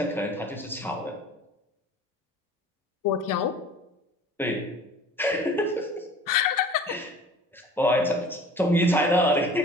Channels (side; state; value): both; normal; correlation 0.45